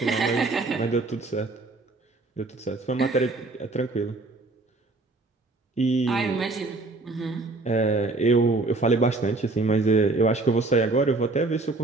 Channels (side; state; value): left; quieter; 3.3 dB